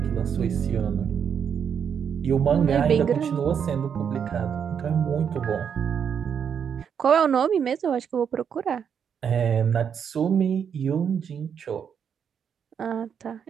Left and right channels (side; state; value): left; quieter; 7.6 dB